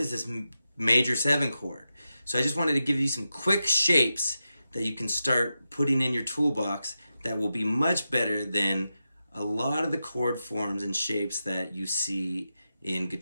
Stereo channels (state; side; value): inverted; both; correlation -0.90